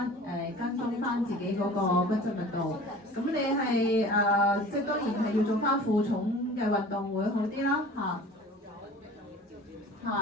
跟蹤翻自己嗰個骨質密度。咁你係即係當然係要做翻負重嘅運動會好啲啦嚇。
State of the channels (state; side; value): normal; both; correlation 0.43